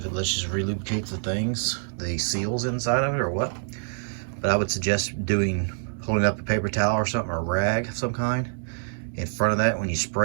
it just relubricates the seals inside of it or what, but I would suggest holding up a paper towel or something, or a rag of some kind in front of that when you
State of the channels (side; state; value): left; silent; digital silence